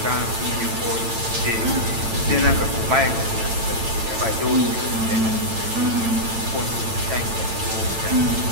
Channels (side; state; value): left; late; 8.9 ms